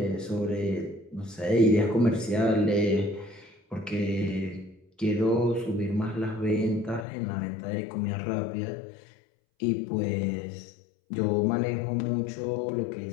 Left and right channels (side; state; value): right; drops out; at 7.1 s